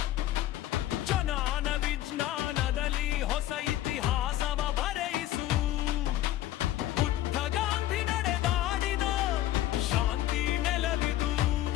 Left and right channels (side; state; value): right; quieter; 14.0 dB